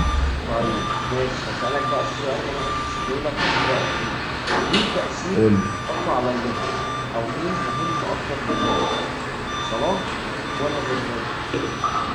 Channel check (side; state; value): both; identical; correlation 1.00